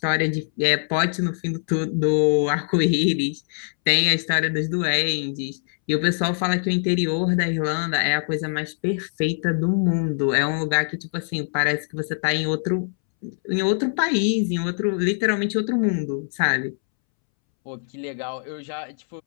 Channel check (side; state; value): right; silent; 63 dB below the other